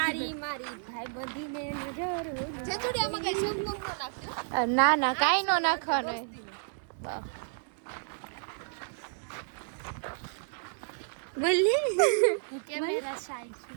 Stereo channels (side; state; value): left; silent; digital silence